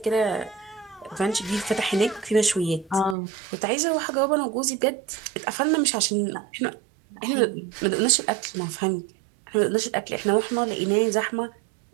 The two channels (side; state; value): left; drops out; at 3.2 s